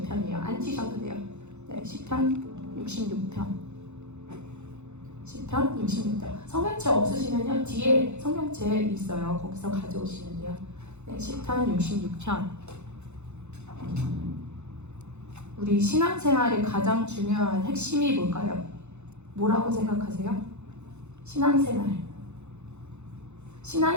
안 치셔도 돼요. 네, 시편 66편. 시편 66편. 성경책 없으시면요 뒤에 성경책 있어요. 거기서 가져오시면 돼요. 네, 시편 66편. 우리 신앙생활의 가장 중요한 핵심이 뭘까요? 뭐라고 생각하세요? 신앙생활은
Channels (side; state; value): left; late; 0.82 ms